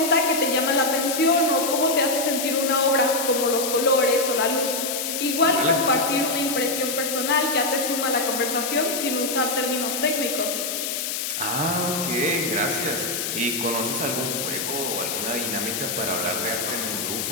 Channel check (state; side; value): noise; left; hiss, 2 dB below the sound